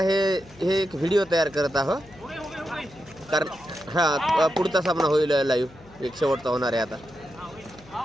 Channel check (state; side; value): noise; left; hum, 24 dB below the sound